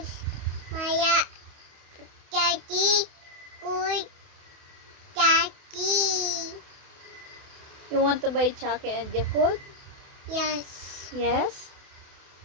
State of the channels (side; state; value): left; late; 28 ms